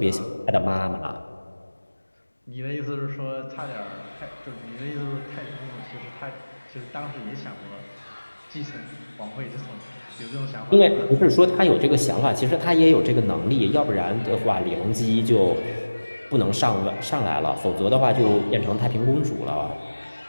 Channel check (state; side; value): inverted; both; correlation -1.00